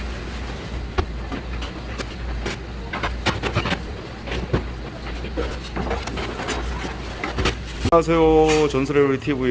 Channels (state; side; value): identical; both; correlation 1.00